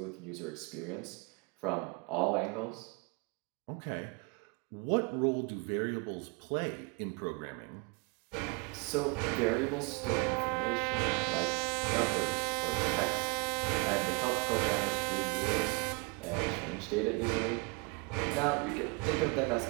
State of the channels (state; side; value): quieter; left; 30.2 dB